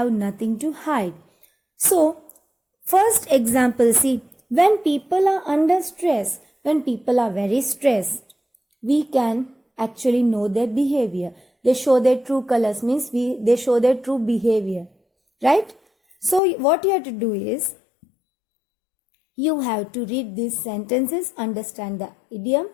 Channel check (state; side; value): drops out; right; at 16.4 s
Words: nothing to hide. So, first example, see, when people are under stress, when people are very stressed, we can actually know their behavior. They show their true colors, means they show their true behavior, right? So, what you have to do is, you have to read these sentences, understand the idiom